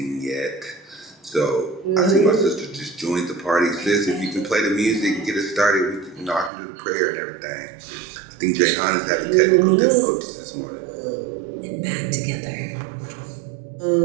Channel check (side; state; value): left; drops out; at 6.5 s